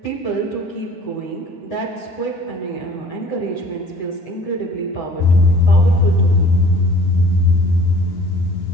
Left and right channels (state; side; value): late; right; 9.7 ms